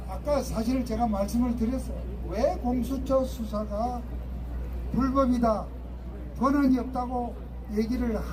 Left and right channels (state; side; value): identical; both; correlation 1.00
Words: 아까 사실 제가 말씀을 드렸어요. 왜 공수처 수사가 불법이다, 권한이 없다고 얘기를